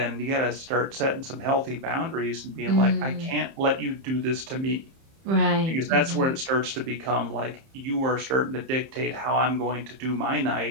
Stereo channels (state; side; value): late; left; 30 ms